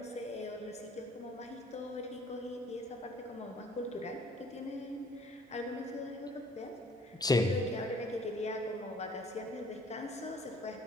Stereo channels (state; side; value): normal; both; correlation 0.57